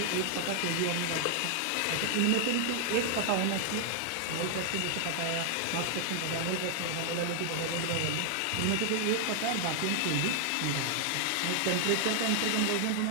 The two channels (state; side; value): different; both; correlation 0.00